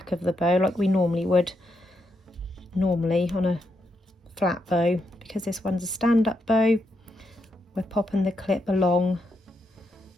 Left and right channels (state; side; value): normal; both; correlation 0.81